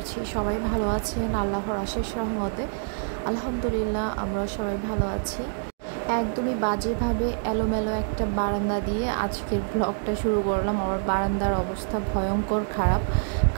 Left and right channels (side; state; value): left; silent; digital silence